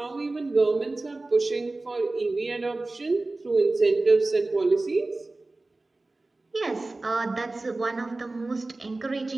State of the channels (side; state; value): left; quieter; 3.1 dB